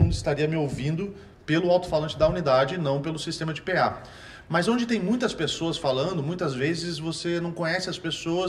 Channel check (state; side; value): identical; both; correlation 1.00